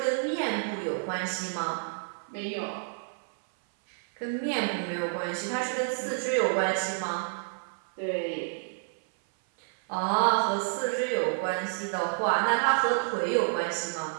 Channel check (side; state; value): left; silent; 56 dB below the other